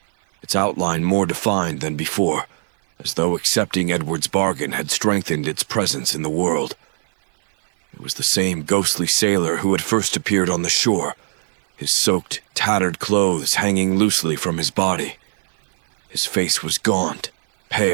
its outline more defined than before, as though accepting Edward's bargain had strengthened its presence in the world. It was the same ghostly sailor who had first appeared on the shore, his soaked, tattered clothes hanging loosely from his body. His face was gaunt,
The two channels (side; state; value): left; silent; 57 dB below the other